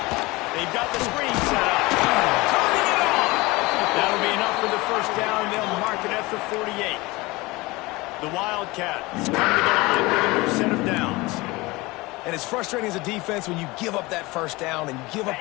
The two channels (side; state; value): right; quieter; 22.4 dB